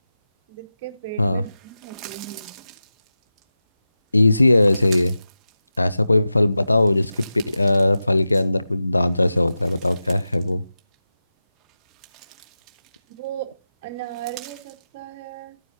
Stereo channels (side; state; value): both; inverted; correlation -0.93